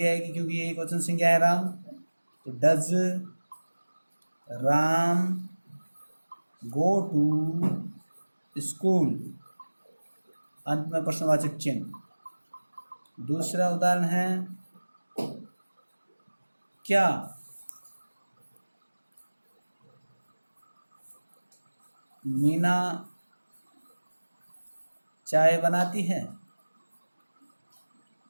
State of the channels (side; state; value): both; inverted; correlation -1.00